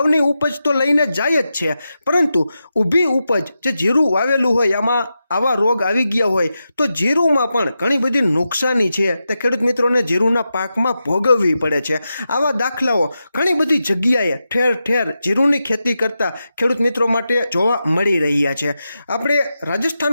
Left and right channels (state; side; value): inverted; both; correlation -0.89